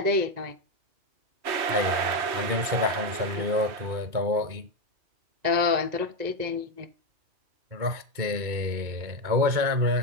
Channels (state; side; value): late; left; 2.2 ms